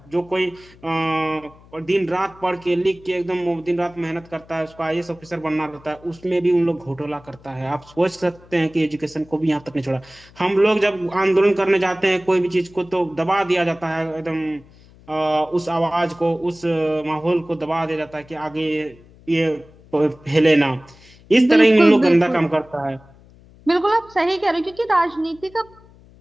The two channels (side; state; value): left; noise; hum, 25 dB below the sound